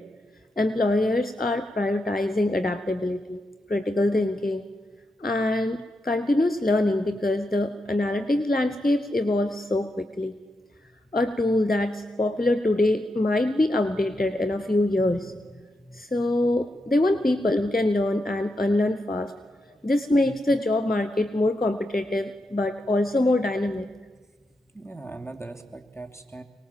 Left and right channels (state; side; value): normal; both; correlation 0.85